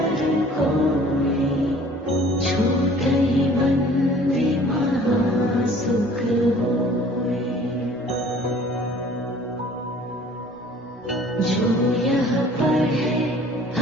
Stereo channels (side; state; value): both; normal; correlation 0.51